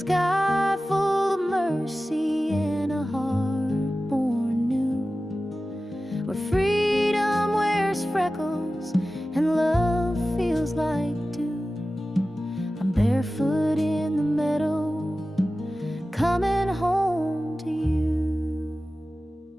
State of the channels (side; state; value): both; normal; correlation 0.95